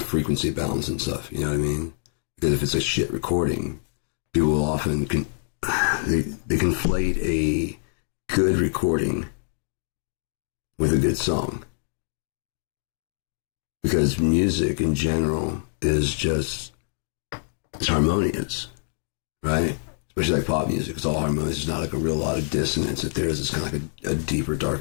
frequency balance and stuff, you know what I mean? Because if it's a shit recording, people will often they conflate a good recording with a good song. Because music in general is just, it's harmonious, right? Especially like pop music, it's all harmonious. There's not like a real lot of dissonance. If there is, it's kind of like a deeper,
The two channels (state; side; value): silent; right; digital silence